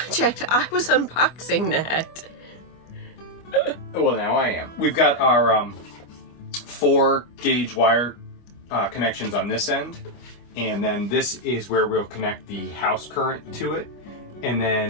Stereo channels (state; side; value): late; right; 25 ms